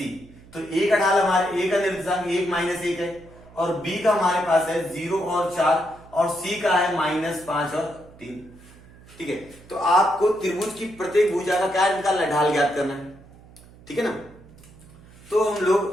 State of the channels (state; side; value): noise; right; hum, 23 dB below the sound